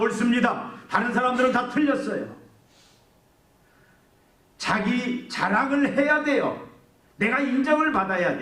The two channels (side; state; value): both; identical; correlation 1.00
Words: 다른 사람들은 다 틀렸어요. 자기 자랑을 해야 돼요. 내가 인정을 받아야